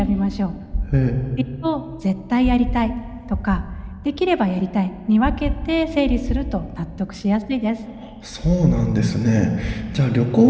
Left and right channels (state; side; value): identical; both; correlation 1.00